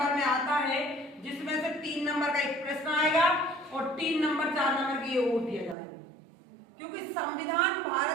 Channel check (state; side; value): drops out; left; at 5.8 s